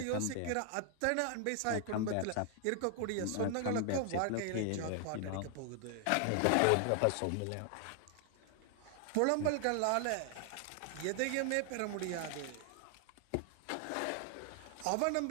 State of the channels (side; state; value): both; different; correlation 0.00